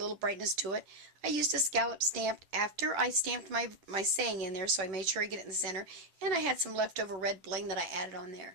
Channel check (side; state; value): left; late; 11 ms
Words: brightness to it. I used a scallop stamp after I stamped my saying in there, so I made sure I get it in the center. And I had some leftover red bling that I added on there.